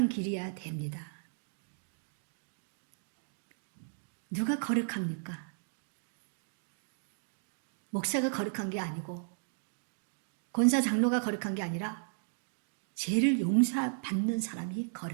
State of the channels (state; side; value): silent; left; digital silence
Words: 길이어야 됩니다. 누가 거룩합니까? 목사가 거룩한 게 아니고 권사 장로가 거룩한 게 아니라 죄를 용서받는 사람이